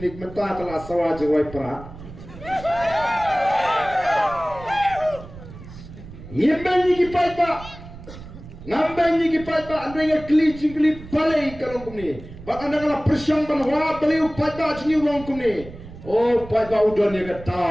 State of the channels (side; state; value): right; noise; rumble, 15 dB below the sound